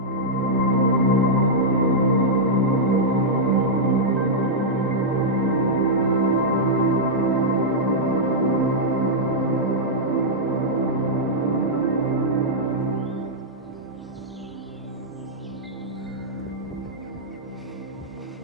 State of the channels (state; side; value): normal; both; correlation -0.08